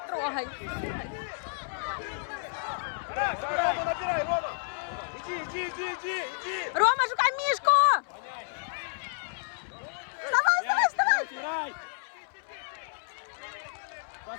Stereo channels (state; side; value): silent; right; 57 dB below the other